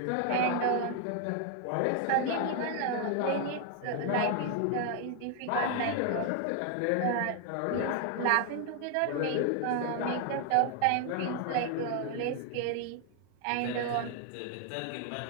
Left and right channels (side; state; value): both; different; correlation 0.00